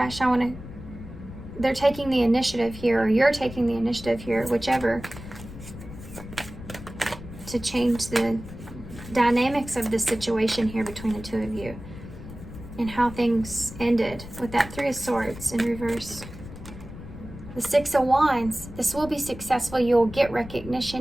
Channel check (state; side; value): noise; left; rumble, 13 dB below the sound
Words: They're taking the initiative here, or you're taking the initiative here, whichever, to change the dynamics of the situation here between the two of you, and how things ended with that Three of Swords in reverse. The Six of Wands. This will be successful. You'll get